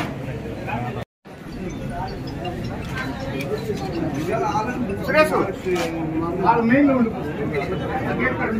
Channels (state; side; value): identical; both; correlation 1.00